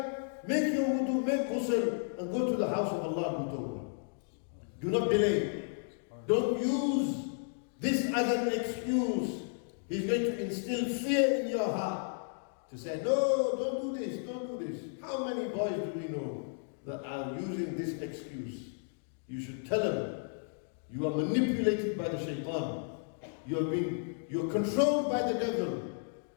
make your wudu, make ghusl, and go to the house of Allah and do. Do not delay. Don't use this as an excuse. He's going to instill fear in your heart. To say, no, don't do this, don't do this. How many boys do we know that are using this excuse? You should tell them, you are manipulated by the shaitan. You're controlled by the devil.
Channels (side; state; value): right; silent; digital silence